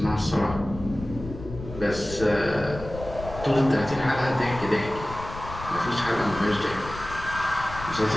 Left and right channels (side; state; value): left; noise; rumble, 12 dB below the sound